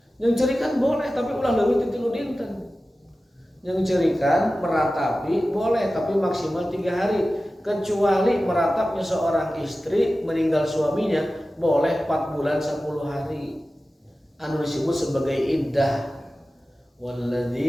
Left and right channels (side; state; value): both; normal; correlation 0.95